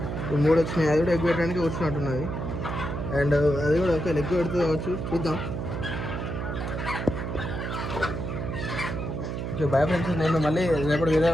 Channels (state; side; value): noise; right; hum, 4 dB below the sound